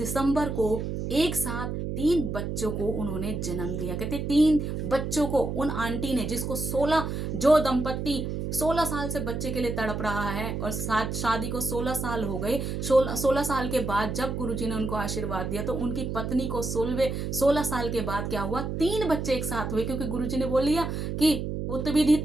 को एक साथ 3 बच्चों को उन्होंने जन्म दिया। कहते 3 बच्चों को उन आंटी ने, जिसको 16, जो दंपत्ति 16 साल से बच्चे के लिए तड़प रहा है और साथ शादी को 16 साल हो गए, 16 साल के बाद जब गुरुजी ने उनको आशीर्वाद दिया तो उनकी पत्नी को 16 साल के बाद क्या हुआ, 3 बच्चे एक साथ हुए, क्योंकि गुरुजी ने बोल दिया कि पुत्र भी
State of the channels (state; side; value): noise; right; hum, 3 dB below the sound